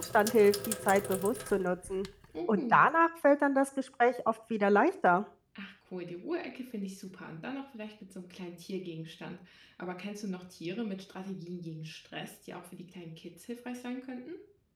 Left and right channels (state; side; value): identical; both; correlation 1.00